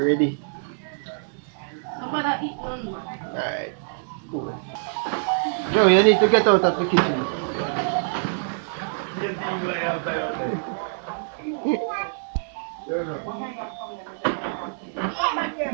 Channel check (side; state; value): left; silent; digital silence